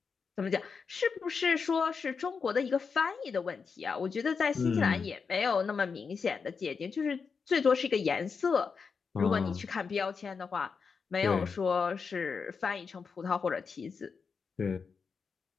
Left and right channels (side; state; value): right; quieter; 5.5 dB